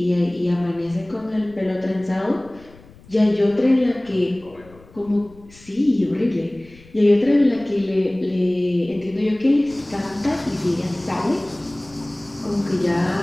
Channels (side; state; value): left; noise; rumble, 24 dB below the sound